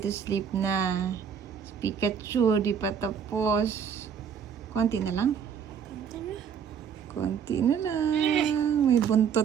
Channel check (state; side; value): quieter; left; 7.5 dB